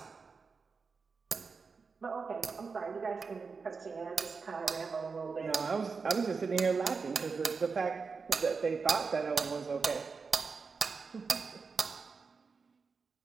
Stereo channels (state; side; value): quieter; left; 4.9 dB